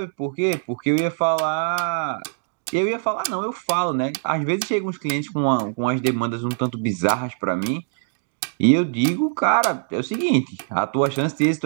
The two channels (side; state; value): left; silent; digital silence